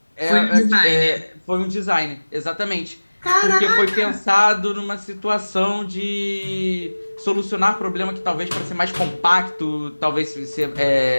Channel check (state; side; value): inverted; both; correlation -1.00